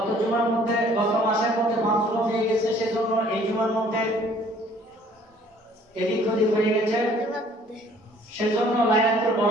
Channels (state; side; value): normal; both; correlation 0.56